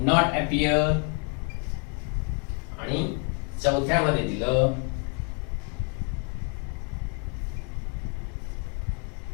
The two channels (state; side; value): quieter; right; 37.8 dB